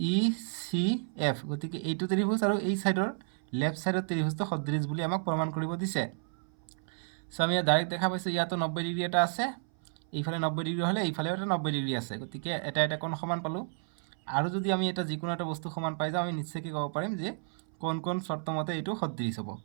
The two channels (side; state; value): left; silent; 57 dB below the other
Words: গতিকে এইটো ত্ৰিভুজ আৰু এই সাইডৰ লেফট সাইডৰ ত্ৰিভুজটো সদৃশ বুলি আমাক প্ৰমাণ কৰিব দিছে সো আমি ডাইৰেক্ট দেখা পাইছোঁ ইয়াতো 90 ডিগ্ৰী এটা আছে এইফালে 90 ডিগ্ৰী হ'লে এইফালেও এটা 90 ডিগ্ৰী আছে গতিকে এটা কোণ সমান পালোঁ আৰু যদি আমি এটা যিকোনো এটা বস্তু সমান পাই যাওঁ আমি নিশ্চয়কৈ ক'ব পাৰিম যে কোন চৰ্ত মতে এইটো সদৃশ হ'ব